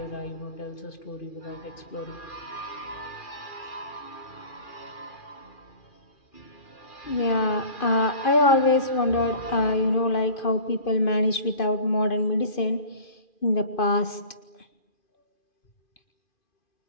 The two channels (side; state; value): right; late; 2.5 ms